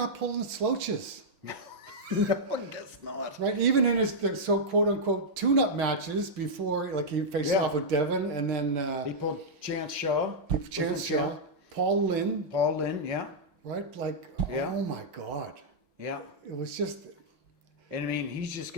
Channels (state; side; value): late; left; 5.9 ms